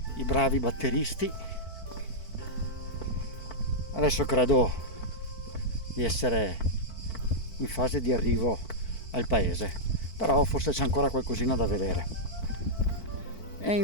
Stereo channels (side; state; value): right; late; 4.5 ms